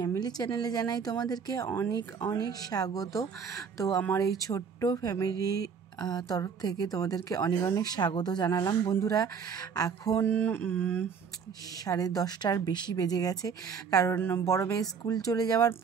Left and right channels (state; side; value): quieter; left; 6.4 dB